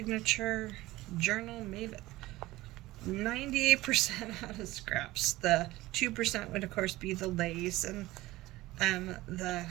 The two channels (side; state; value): left; quieter; 18.2 dB